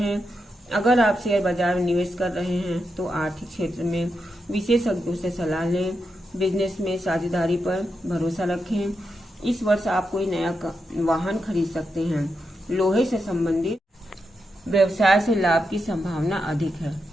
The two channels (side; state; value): both; normal; correlation 0.86